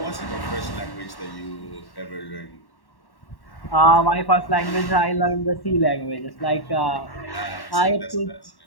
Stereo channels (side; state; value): right; late; 1.1 ms